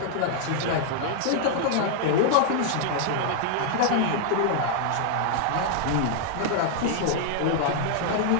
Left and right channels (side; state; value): both; different; correlation -0.01